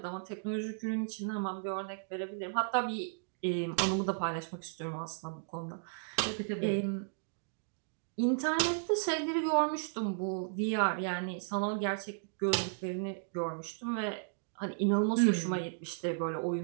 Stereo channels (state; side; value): silent; left; digital silence